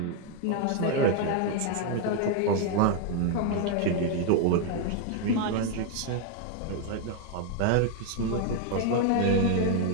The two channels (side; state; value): both; different; correlation 0.01